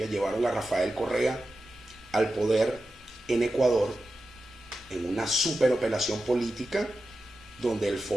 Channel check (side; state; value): both; normal; correlation 0.92